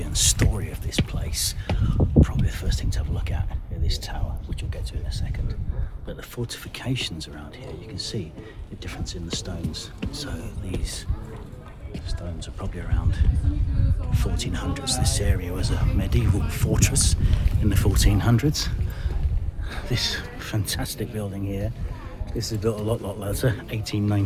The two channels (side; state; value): both; identical; correlation 1.00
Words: and story of this place. Probably the first thing to have a look at is this tower, which we'll get to in a second. But the fortifications around here, you can see the difference in the stones. So these stones are probably around 1400s. This area was a medieval fortress in the 1400s. This fantastic building here, this is built a lot later,